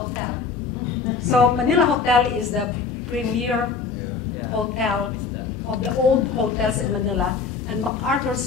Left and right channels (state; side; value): quieter; right; 5.2 dB